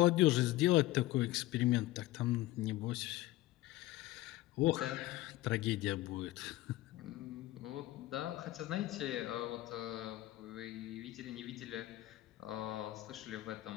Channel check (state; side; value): quieter; right; 16.9 dB